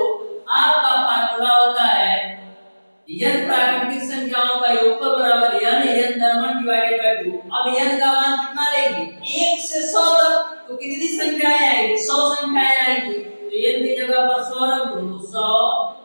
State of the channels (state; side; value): inverted; both; correlation -1.00